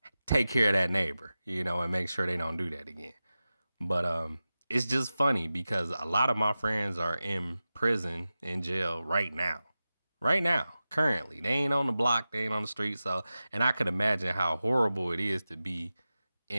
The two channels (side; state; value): both; inverted; correlation -0.94